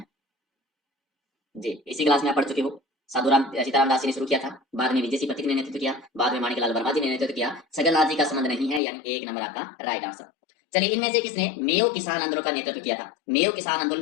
जी, इसी क्लास में आप पढ़ चुके हो। साधुराम सीताराम दास जी ने शुरू किया था, बाद में विजय सिंह पथिक ने नेतृत्व किया, बाद में माणिकलाल वर्मा जी ने नेतृत्व किया। छगनलाल जी का संबंध नहीं है, यानी 1 नंबर आपका राइट आंसर। चलिए इनमें से किसने मेयो किसान आंदोलन का नेतृत्व किया था? मेयो किसान आंदोलन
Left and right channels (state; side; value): drops out; right; at 8.8 s